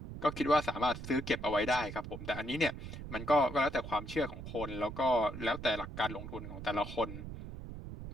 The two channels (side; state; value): right; noise; rumble, 10 dB below the sound